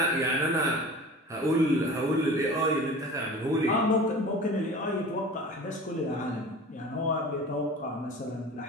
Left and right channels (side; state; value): both; normal; correlation 0.39